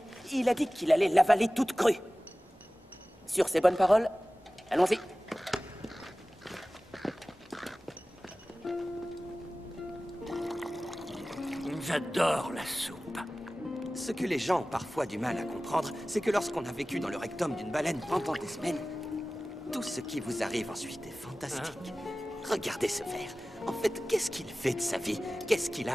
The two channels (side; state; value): both; normal; correlation 0.97